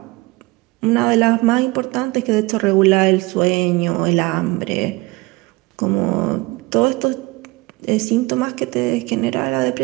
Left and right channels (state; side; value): quieter; left; 22.7 dB